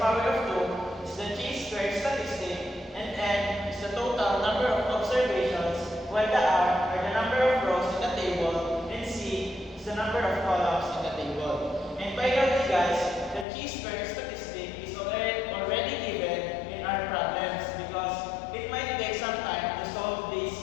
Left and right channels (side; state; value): right; drops out; at 13.5 s